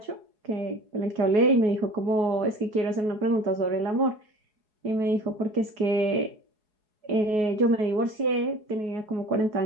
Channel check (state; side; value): late; left; 4.7 ms